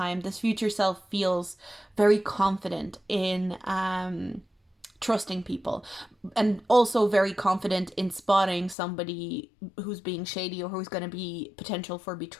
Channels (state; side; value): drops out; right; at 8.8 s